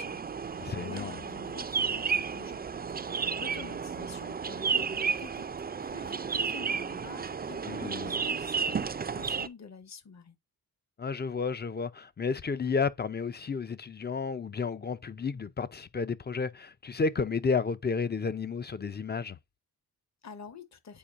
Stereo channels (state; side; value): normal; both; correlation 0.24